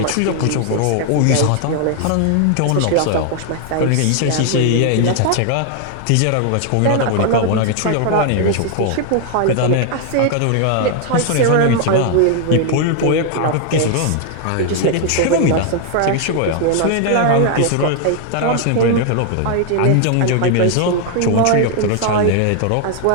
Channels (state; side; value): different; both; correlation 0.00